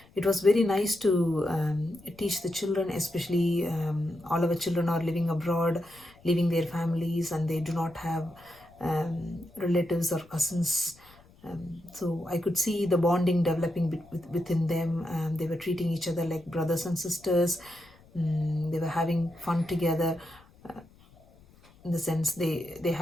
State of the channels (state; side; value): noise; left; rumble, 27 dB below the sound